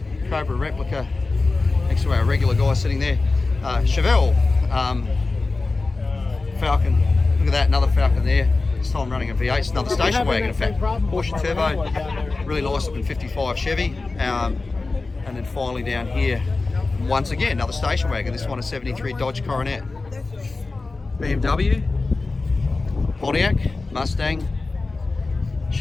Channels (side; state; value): right; quieter; 3.6 dB